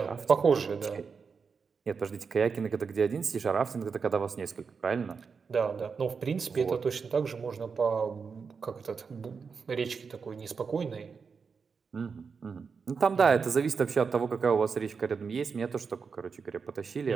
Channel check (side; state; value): left; quieter; 5.5 dB